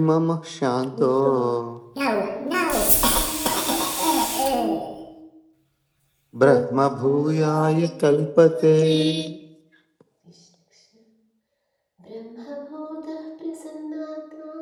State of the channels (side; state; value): both; identical; correlation 1.00